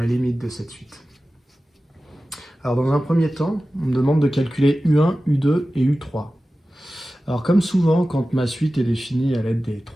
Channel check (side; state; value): both; normal; correlation 0.95